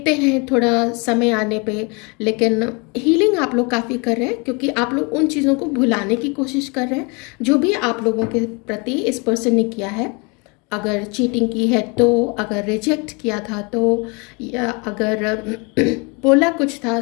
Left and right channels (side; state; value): right; quieter; 30.4 dB